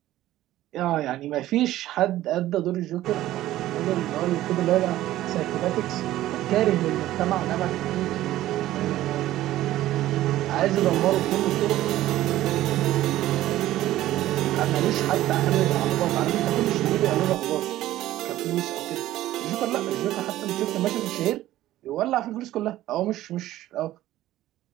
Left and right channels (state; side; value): quieter; left; 14.6 dB